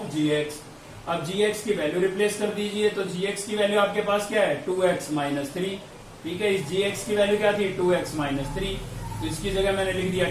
जी एक्स। अब gx की वैल्यू रिप्लेस कर दीजिए, तो gx की वैल्यू आपके पास क्या है 2x माइनस 3, ठीक है। इस gx की वैल्यू क्या थी 2x माइनस 3, तो इसकी जगह मैंने लिख दिया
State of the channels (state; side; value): identical; both; correlation 1.00